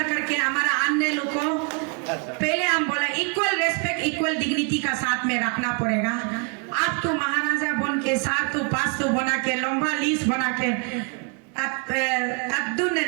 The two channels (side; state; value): left; quieter; 35.3 dB